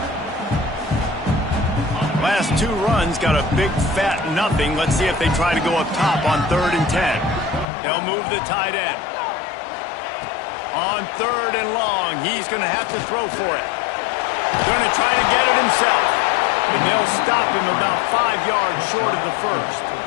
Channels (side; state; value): right; drops out; at 7.7 s